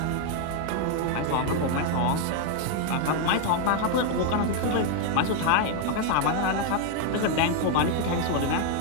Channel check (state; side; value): different; both; correlation 0.00